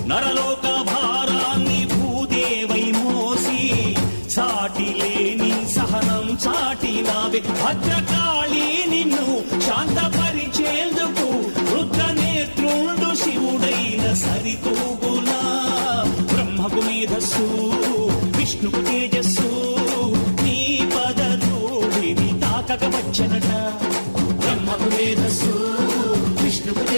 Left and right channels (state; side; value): inverted; both; correlation -1.00